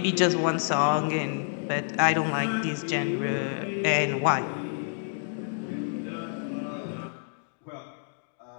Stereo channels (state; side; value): silent; right; digital silence